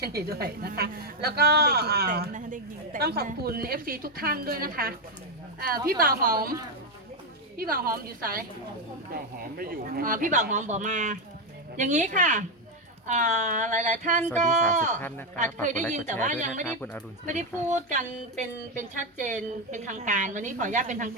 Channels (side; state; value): both; normal; correlation 0.06